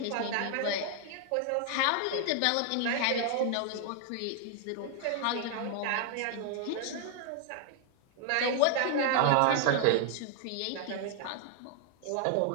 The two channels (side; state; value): both; different; correlation 0.00